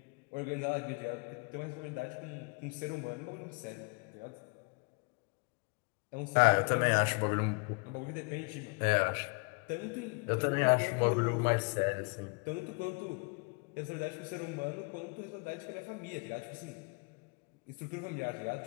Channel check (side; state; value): right; quieter; 32.5 dB